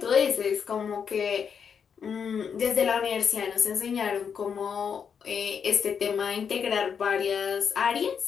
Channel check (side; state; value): right; quieter; 6.9 dB